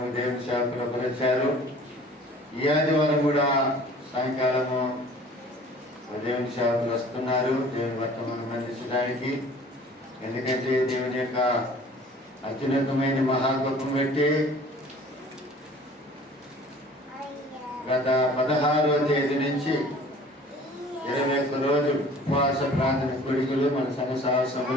దేవుని సేవకులు ఒకరు వచ్చారు. ఈ ఆదివారం కూడా సాయంకాలము దేవుని సేవకులు వస్తున్నారు దేవుని వర్తమానం అందించడానికి. ఎందుకంటే దేవుని యొక్క అత్యున్నతమైన మహాగొప్పను బట్టి గత 16వ తేదీ నుంచి 21 రోజులు ఉపవాస ప్రార్థన కొడుకులు మన సంఘ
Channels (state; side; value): normal; both; correlation 0.49